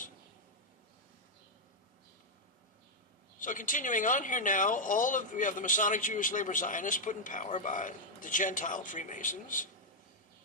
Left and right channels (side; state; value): both; normal; correlation -0.03